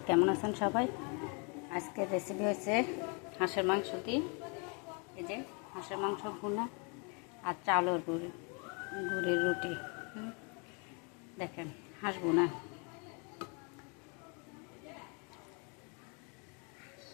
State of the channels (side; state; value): right; quieter; 34.8 dB